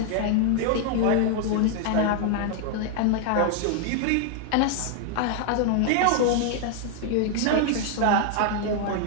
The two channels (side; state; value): both; different; correlation 0.00